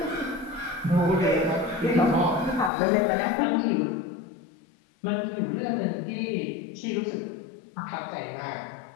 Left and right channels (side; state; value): right; drops out; at 2.7 s